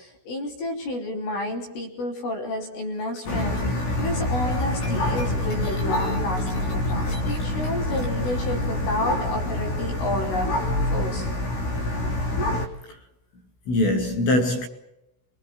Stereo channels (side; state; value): right; late; 16 ms